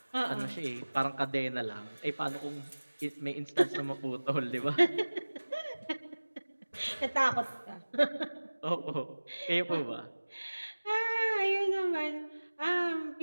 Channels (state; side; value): inverted; both; correlation -1.00